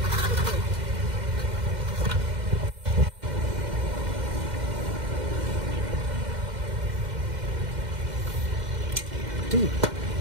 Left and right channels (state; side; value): late; left; 2.1 ms